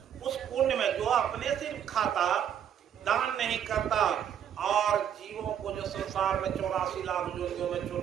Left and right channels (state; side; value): quieter; left; 9.2 dB